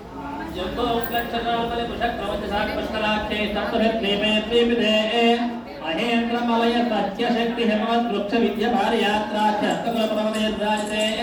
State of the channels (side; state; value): both; identical; correlation 1.00